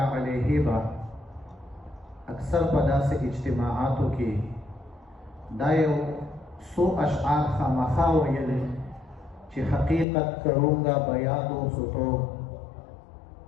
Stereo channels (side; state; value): right; drops out; at 10.1 s